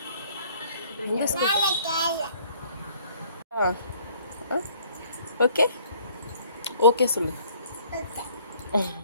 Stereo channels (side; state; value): both; inverted; correlation -0.57